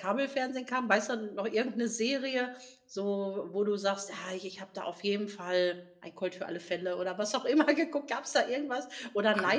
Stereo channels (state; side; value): identical; both; correlation 1.00